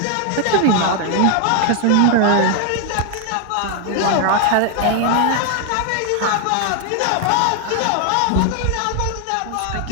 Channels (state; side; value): different; both; correlation 0.00